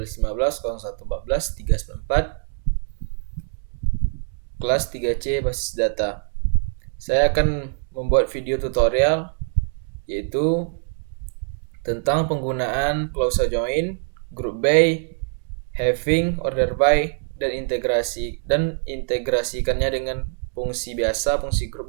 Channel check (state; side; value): silent; left; digital silence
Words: 0114 394, kelas 3C basis data. Saya akan membuat video tutorial yaitu tentang penggunaan clause join, group by, having, order by, dan integrasikannya dengan fungsi biasa, fungsi